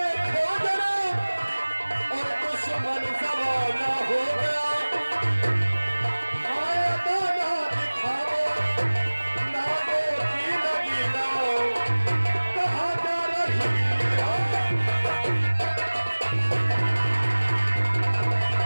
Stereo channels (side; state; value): both; inverted; correlation -1.00